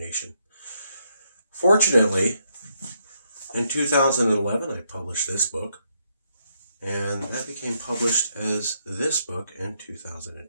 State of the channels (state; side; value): inverted; both; correlation -0.77